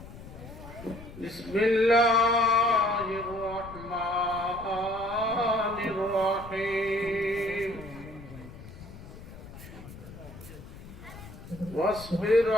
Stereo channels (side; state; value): left; noise; rumble, 15 dB below the sound